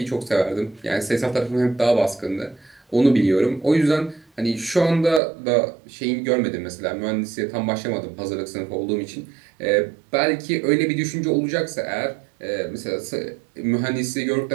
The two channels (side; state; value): left; drops out; at 5.2 s